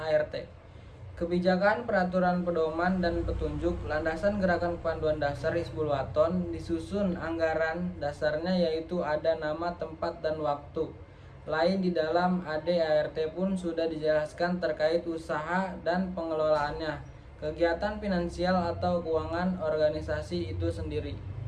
Kebijakan, peraturan pedoman, dan petunjuk landasan gerakan kepanduan dasar Hizbul Waton disusun anggaran dasarnya, yaitu ada nama, tempat, dan waktu. Lain di dalam AD ART pun sudah dijelaskan terkait usaha dan pengelolaannya, kegiatan finansial atau keuangan organisasi itu sendiri.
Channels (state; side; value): identical; both; correlation 1.00